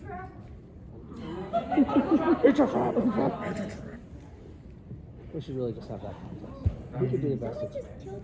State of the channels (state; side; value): identical; both; correlation 1.00